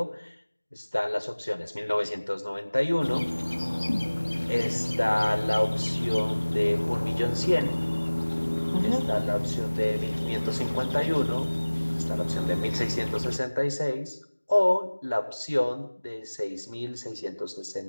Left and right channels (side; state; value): both; inverted; correlation -1.00